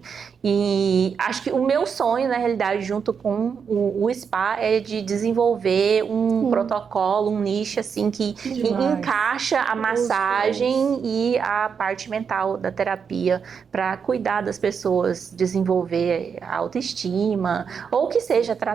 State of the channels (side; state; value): left; quieter; 6.5 dB